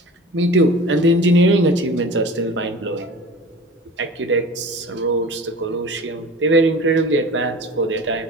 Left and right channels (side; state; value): both; normal; correlation 0.38